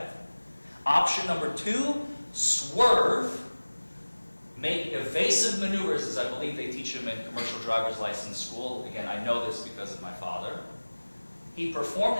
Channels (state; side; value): inverted; both; correlation -1.00